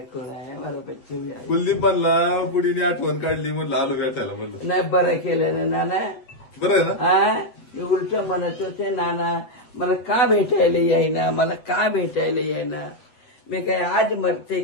कोण आहे हमारा बच्चे भी आए. कुलदीप म्हणला बुडीने आठवण काढली म्हणलं आलो भेटायला म्हणलं. नाही बरं केलं ना नाना. बरं आहे ना? हा उलट म्हणत होते नाना मला का भेटायला येईना मला का भेटायला येईना. मी काय आज मरते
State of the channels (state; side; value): late; right; 8.2 ms